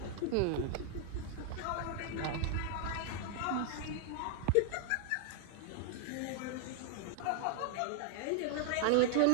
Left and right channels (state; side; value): different; both; correlation 0.00